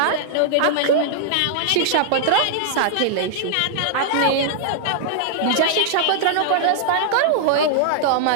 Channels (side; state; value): both; different; correlation -0.01